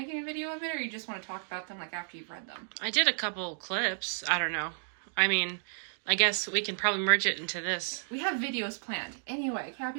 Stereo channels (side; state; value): left; silent; digital silence